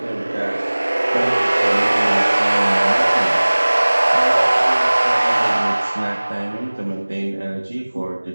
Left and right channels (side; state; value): both; inverted; correlation -1.00